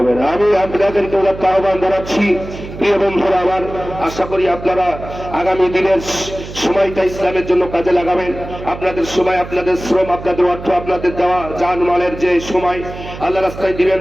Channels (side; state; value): right; noise; hum, 12 dB below the sound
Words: না। আমি আপনাদেরকে আহ্বান জানাচ্ছি, প্রিয় বন্ধুরা আমার, আশা করি আপনারা আগামী দিনের সময়টা ইসলামের জন্য কাজে লাগাবেন। আপনাদের সময়, আপনাদের শ্রম, আপনাদের অর্থ, আপনাদের দেওয়া জানমালের যে সময় আল্লাহ রাস্তায় দিবেন